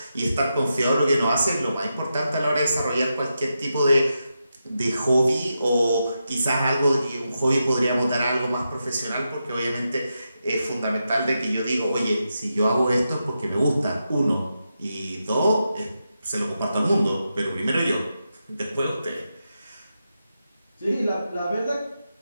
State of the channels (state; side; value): inverted; both; correlation -0.87